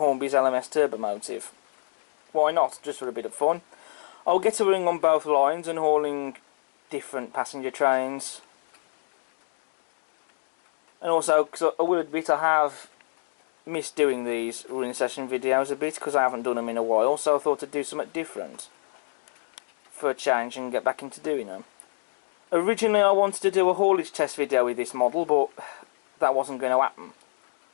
LMS Turbomotive. Why not, just for a bit of fun. I'll get a running on both lines and hauling different passenger trains. And also, because I will admit I have missed doing these running session videos a bit because I haven't done them in a while, so I thought I'd do something different for a change and get back into doing them. Originally I wanted to do a haulage test video with this model, but that wasn't going to happen.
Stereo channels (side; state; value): right; silent; digital silence